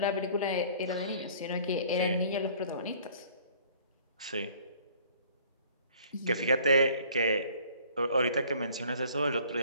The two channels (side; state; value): both; inverted; correlation -0.54